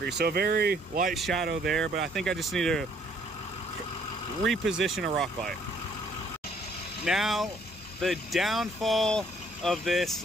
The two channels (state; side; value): normal; both; correlation 0.63